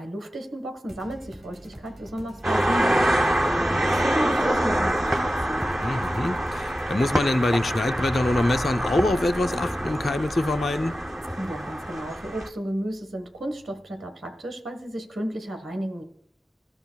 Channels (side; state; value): both; normal; correlation 0.93